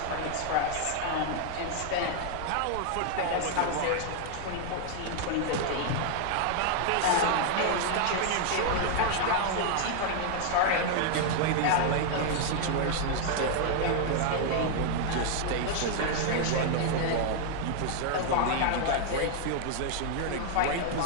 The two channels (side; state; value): both; different; correlation 0.00